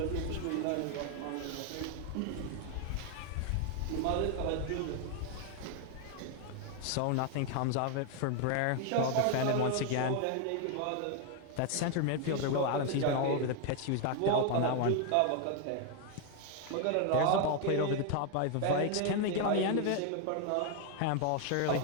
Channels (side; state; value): both; different; correlation 0.01